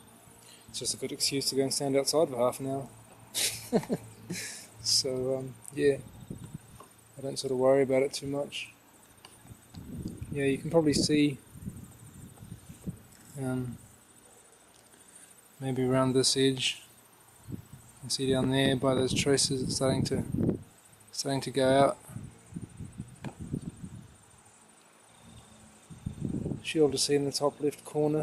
It's just a good excuse to go and stand outside for half an hour. So yeah, I don't sort of worry about it too much. Yeah, you can probably see maybe around this edge. You can see down there by those traces it's starting to go out. Should be able to see in the top left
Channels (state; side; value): identical; both; correlation 1.00